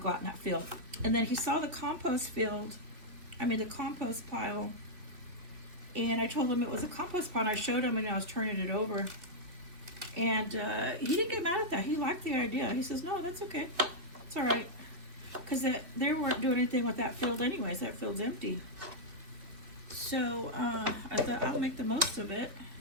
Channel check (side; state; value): left; late; 2.8 ms